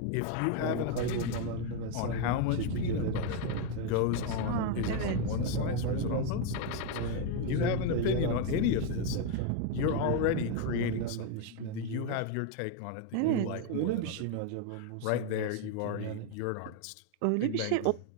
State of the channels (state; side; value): different; both; correlation 0.01